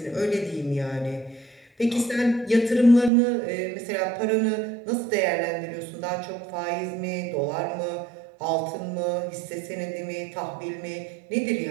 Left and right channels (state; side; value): drops out; left; at 3.1 s